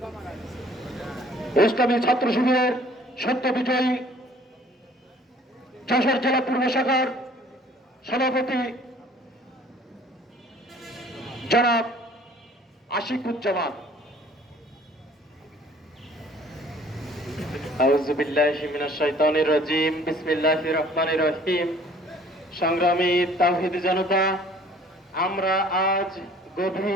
ইসলামী ছাত্র শিবিরের সত্য বিজয়ী যশোর জেলা পূর্ব শাখার সভাপতি জনাব আশিকুজ্জামান। আউযু বিল্লাহি মিনাশ শাইতানির রাজীম, বিসমিল্লাহির রহমানির রহিম। সংগ্রামী তাওহীদি জনতা, আমরা আজ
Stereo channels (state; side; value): normal; both; correlation 0.54